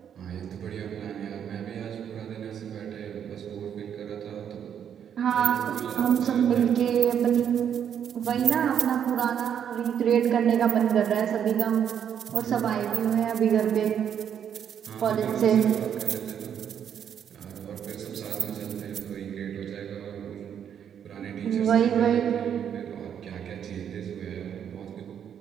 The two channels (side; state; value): left; quieter; 8.7 dB